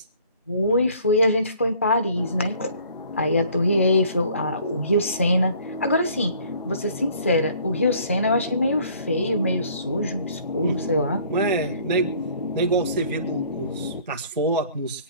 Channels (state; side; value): inverted; both; correlation -0.55